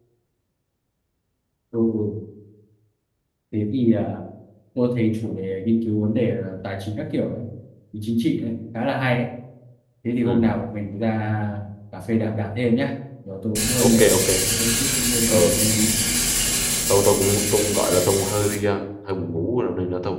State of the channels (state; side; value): identical; both; correlation 1.00